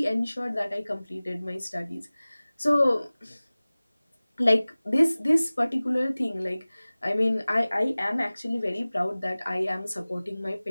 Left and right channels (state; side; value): inverted; both; correlation -0.99